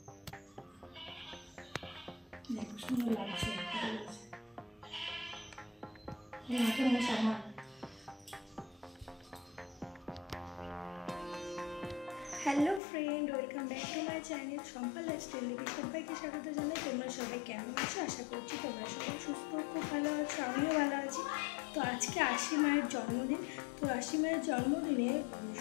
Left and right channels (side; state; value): right; drops out; at 12.8 s